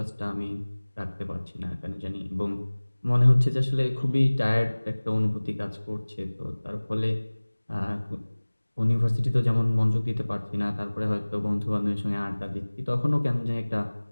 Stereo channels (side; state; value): both; inverted; correlation -1.00